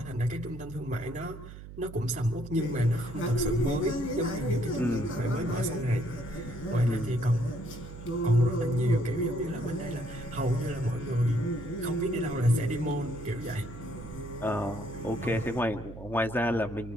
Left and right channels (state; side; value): noise; right; hum, 13 dB below the sound